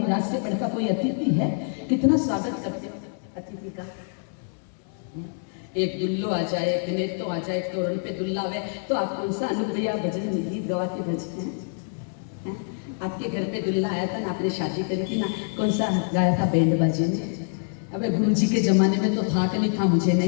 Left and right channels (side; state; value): right; silent; 61 dB below the other